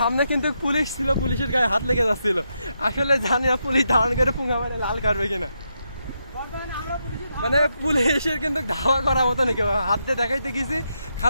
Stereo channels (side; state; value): both; inverted; correlation -0.83